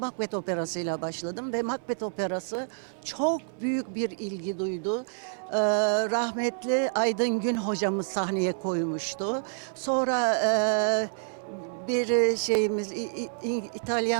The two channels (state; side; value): silent; left; digital silence